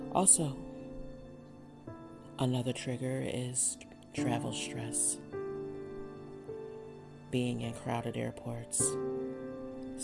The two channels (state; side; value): identical; both; correlation 1.00